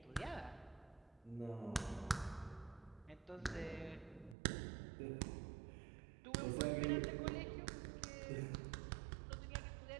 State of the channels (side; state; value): left; drops out; at 4.4 s